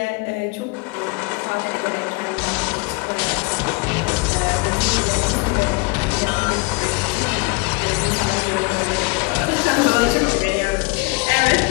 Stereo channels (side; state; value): right; quieter; 27.3 dB